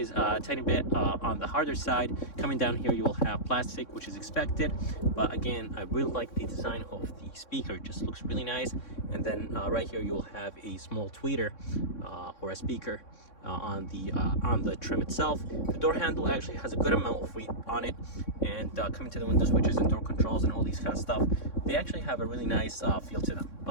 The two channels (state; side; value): late; right; 3.6 ms